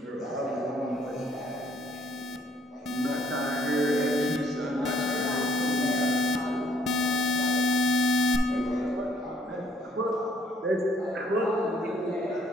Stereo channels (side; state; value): both; normal; correlation 0.64